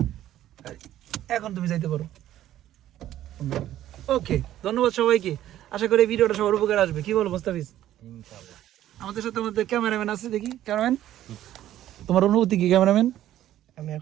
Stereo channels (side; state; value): left; quieter; 12.8 dB